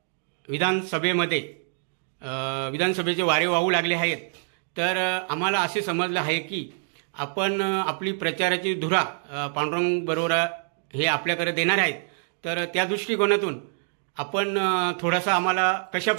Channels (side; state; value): left; silent; 57 dB below the other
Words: विधानसभेमध्ये विधानसभेचे वारे वाहू लागले आहेत. तर आम्हाला असे समजलं आहे की आपण आपली प्रचाराची धुरा पांडुरंग बरोरा हे आपल्याकडे देणार आहेत. तर त्या दृष्टिकोनातून आपण थोडासा आम्हाला कशा